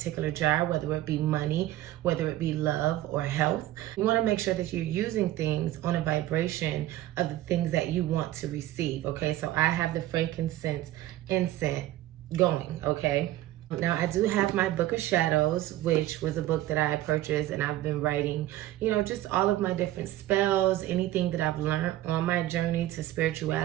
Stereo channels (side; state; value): left; quieter; 15.0 dB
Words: jar, whether it be money, whether it be love or health. You want to make sure that you're using things on a vibration of the things that you want to receive, okay? So I have the frankincense incense going, okay? Now, I do have my book of shadows, which was a book that I purchased, and I've been writing, just all of my different spells, anything that I've learned on my journey to